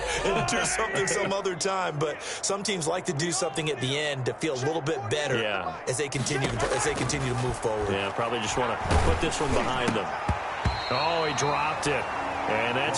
and do something some other time." But some teams like to do something at the end to feel a little bit better as they continue to move forward. Yeah, probably just want to put this one behind them. Oh, he dropped it. And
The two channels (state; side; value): identical; both; correlation 1.00